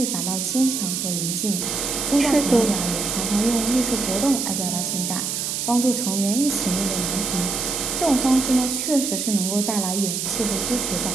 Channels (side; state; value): right; noise; hiss, 2 dB below the sound